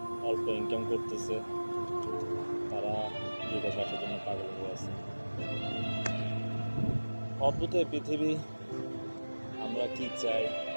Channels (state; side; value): inverted; both; correlation -1.00